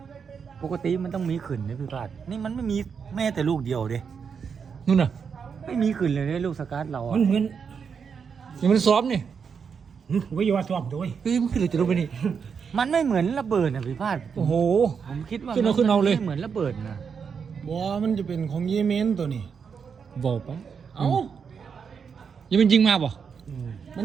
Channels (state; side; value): quieter; left; 6.4 dB